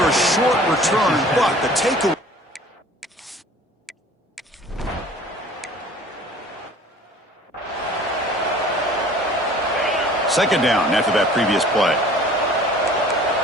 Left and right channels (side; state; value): both; normal; correlation 0.48